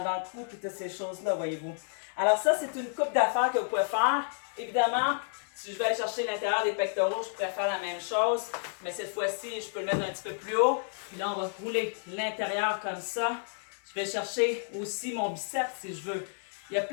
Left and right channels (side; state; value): right; silent; digital silence